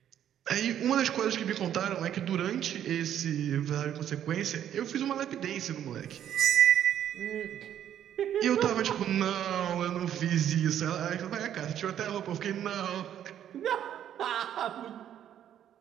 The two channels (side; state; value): left; quieter; 10.4 dB